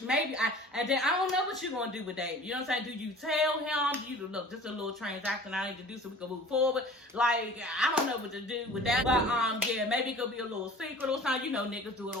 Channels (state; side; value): normal; both; correlation 0.44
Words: and then I don't know what you're gonna do with Dave. You know what I'm saying? Do you tell him? Do you look, this is a little transaction I need to do so we can move forward? Like, I don't know what to do with that. But yeah, maybe it could be a little secret or something. You know, niggas do it